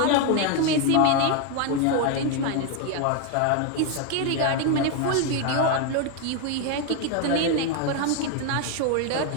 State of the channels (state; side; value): different; both; correlation 0.01